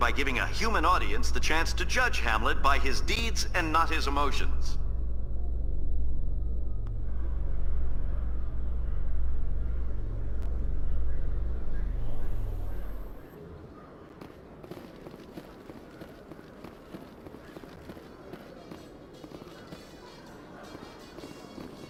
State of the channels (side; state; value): both; identical; correlation 1.00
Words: giving a human audience the chance to judge Hamlet by his deeds and not his emotions.